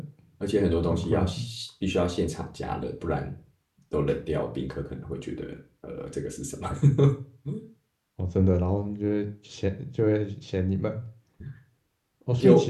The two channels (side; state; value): both; identical; correlation 1.00